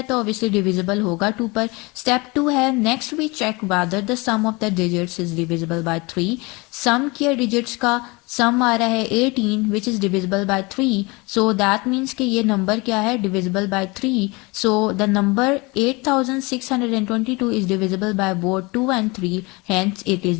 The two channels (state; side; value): quieter; right; 25.7 dB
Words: तो ऑब्वियसली डिविजिबल होगा 2 पर। स्टेप 2 है, next we check whether the sum of the digits is divisible by 3। Sum किया डिजिट्स का, सम आ रहा है 18 which is divisible by 3, so that means कि ये नंबर क्या है, divisible by 3। So the number 8622 is divisible by both 2 and 3, hence it is